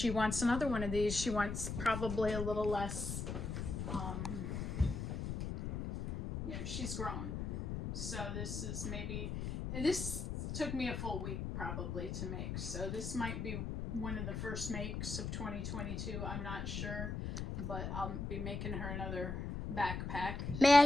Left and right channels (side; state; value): left; noise; rumble, 4 dB below the sound